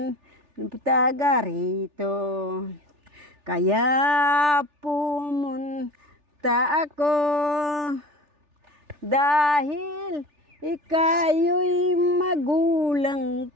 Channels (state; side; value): late; left; 3.4 ms